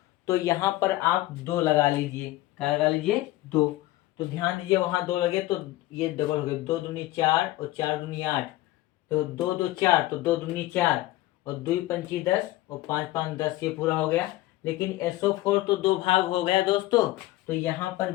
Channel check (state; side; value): quieter; right; 17.2 dB